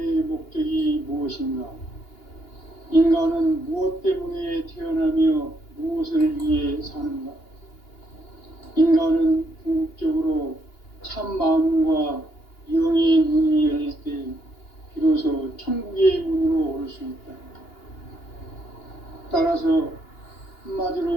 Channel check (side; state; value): right; late; 2.9 ms